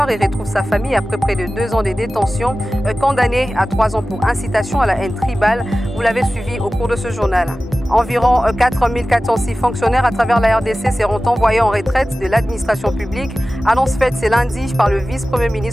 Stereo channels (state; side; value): normal; both; correlation 0.96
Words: et retrouve sa famille après près de 2 ans de détention. Condamné à 3 ans pour incitation à la haine tribale. Vous l'avez suivi au cours de ce journal. Environ 4406 fonctionnaires à travers la RDC seront envoyés en retraite de l'administration publique. Annonce faite ce lundi par le vice-premier